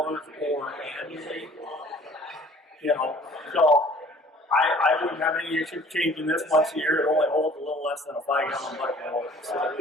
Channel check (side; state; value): both; normal; correlation 0.52